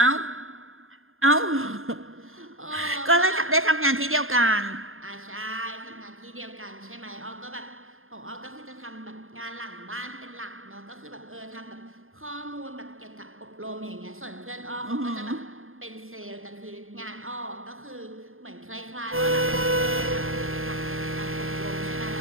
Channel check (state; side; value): late; left; 0.60 ms